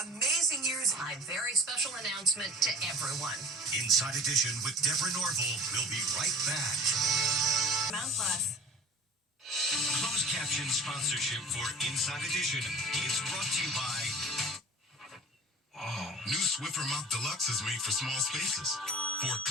amazing years. A very special announcement to everyone. Inside Edition with Deborah Norville. We'll be right back. Mount Plus. Closed caption sponsorship for Inside Edition is brought to you by... New Swiffer Mop Deluxe is made for small spaces. For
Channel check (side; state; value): both; normal; correlation 0.40